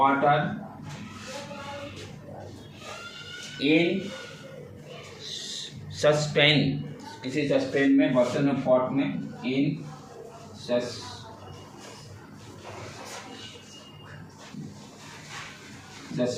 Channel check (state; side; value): identical; both; correlation 1.00